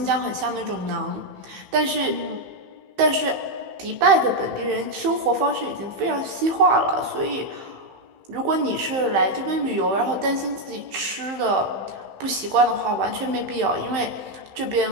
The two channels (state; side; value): late; left; 15 ms